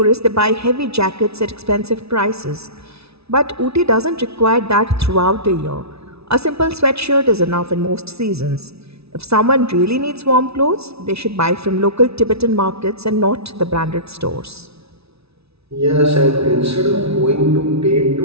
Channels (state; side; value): late; left; 0.79 ms